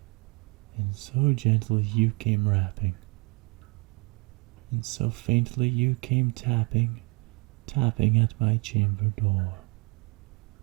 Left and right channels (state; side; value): quieter; left; 27.3 dB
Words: and so gently you came rapping, and so faintly you came tapping at my chamber door,